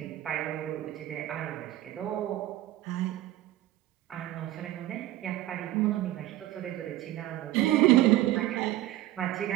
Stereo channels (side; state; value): left; quieter; 15.0 dB